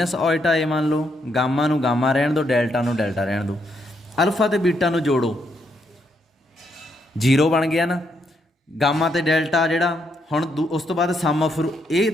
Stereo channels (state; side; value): normal; both; correlation 0.77